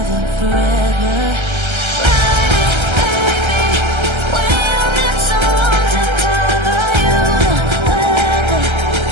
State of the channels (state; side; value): late; left; 1.3 ms